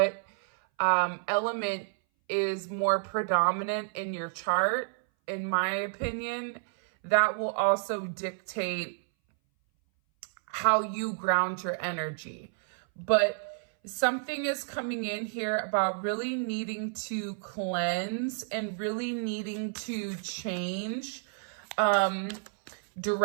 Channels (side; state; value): left; silent; 58 dB below the other